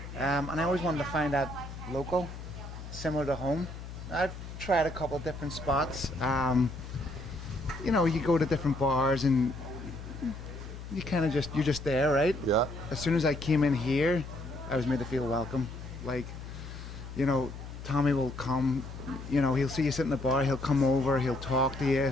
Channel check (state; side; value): noise; left; hum, 11 dB below the sound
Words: And I always wanted to find that local, similar to home. I've tried a couple of different spots. You know, you go to different bars and you kind of you're just there, right? Yeah. As soon as I came in here, I was made to feel welcome. Like, you know, Tommy will come, you know, he'll see you sit in the bar, he'll come over, he'll talk to you.